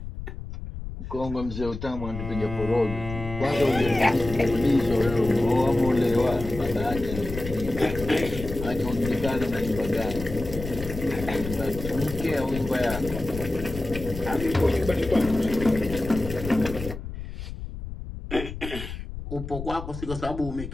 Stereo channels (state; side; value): noise; left; rumble, 9 dB below the sound